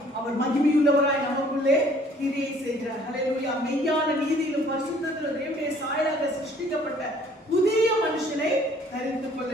அவர் மகிமையுள்ளவராய் நமக்குள்ளே கிரியை செய்கிறார். அல்லேலூயா. மெய்யான நீதியிலும் பரிசுத்தத்திலும் தேவனுடைய சாயலாக சிருஷ்டிக்கப்பட்ட புதிய மனுஷனை தரித்துக்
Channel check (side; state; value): both; normal; correlation 0.57